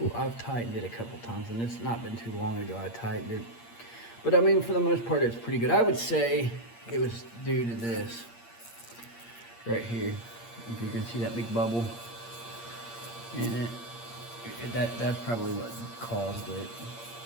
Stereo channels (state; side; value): late; right; 8.6 ms